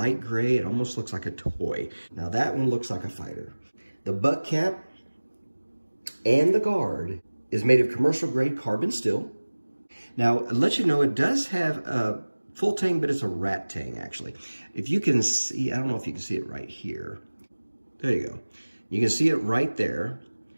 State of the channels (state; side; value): inverted; both; correlation -1.00